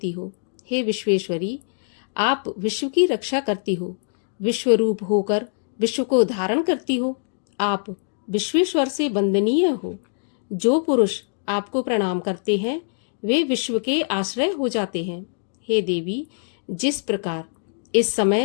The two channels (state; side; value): silent; right; digital silence